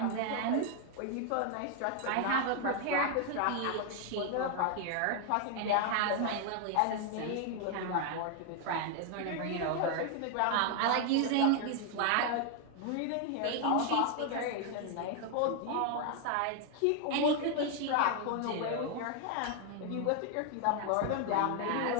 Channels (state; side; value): different; both; correlation 0.00